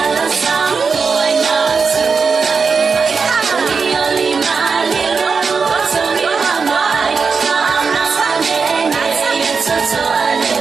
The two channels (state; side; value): quieter; left; 5.2 dB